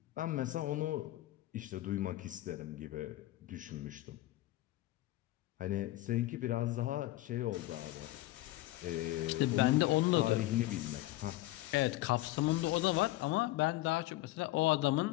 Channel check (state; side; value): quieter; right; 17.1 dB